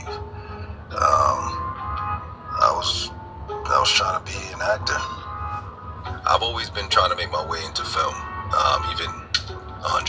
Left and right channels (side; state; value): both; identical; correlation 1.00